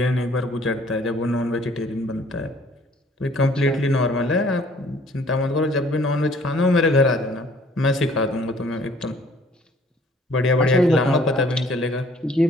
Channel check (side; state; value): both; normal; correlation 0.58